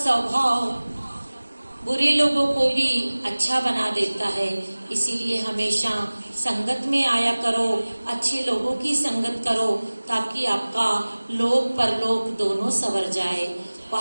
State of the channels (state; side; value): inverted; both; correlation -1.00